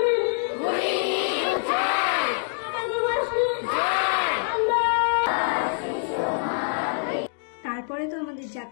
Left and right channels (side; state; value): right; silent; digital silence